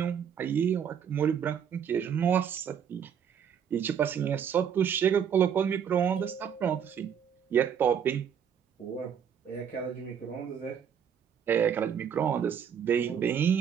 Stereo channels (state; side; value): quieter; left; 8.1 dB